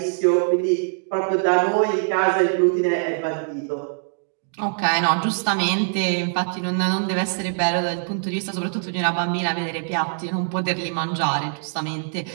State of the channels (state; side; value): silent; left; digital silence